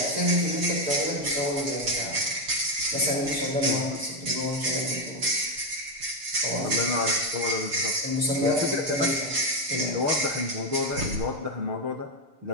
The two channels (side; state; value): left; late; 7.1 ms